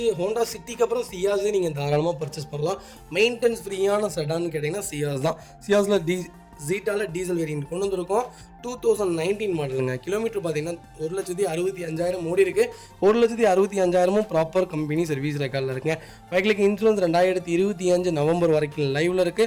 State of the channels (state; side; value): identical; both; correlation 1.00